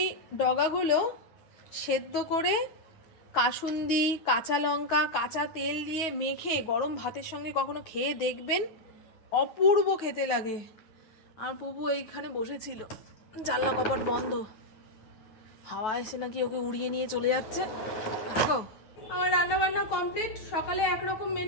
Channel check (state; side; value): late; right; 9.3 ms